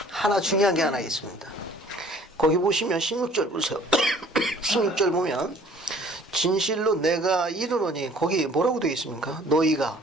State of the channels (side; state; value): both; normal; correlation 0.53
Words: 하나 중요한 게 하나 있습니다. 거기 보시면 16절 보세요. 16절 보면 진실로 내가 이르노니 거기 뭐라고 되어 있습니까? 너희가